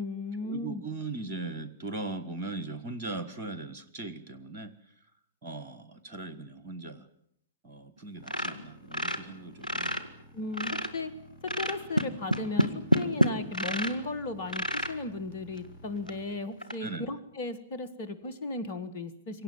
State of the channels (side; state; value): both; inverted; correlation -0.50